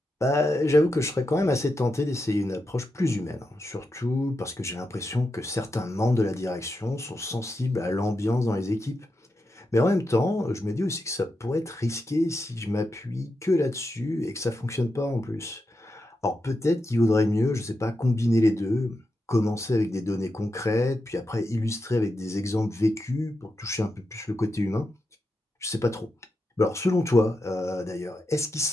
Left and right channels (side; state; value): both; normal; correlation 0.87